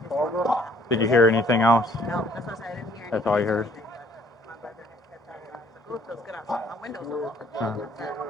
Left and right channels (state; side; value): normal; both; correlation 0.61